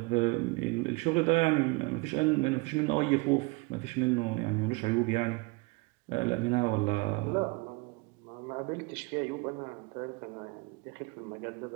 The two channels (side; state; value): left; quieter; 27.2 dB